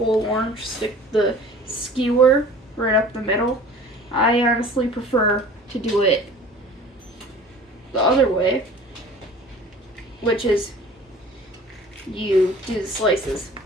orange, stick the skewer right up the middle. I honestly prefer to do it the other way, which is you do the slices.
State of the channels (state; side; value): normal; both; correlation 0.44